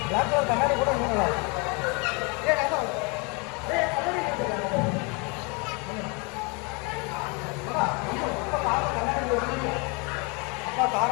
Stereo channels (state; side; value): quieter; right; 31.5 dB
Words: பிளாக் கலர் கண்ணாடி கூட இன்னும் நல்லா இருக்கும் அப்பா